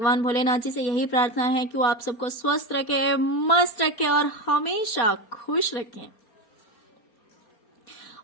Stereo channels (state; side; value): late; right; 4.3 ms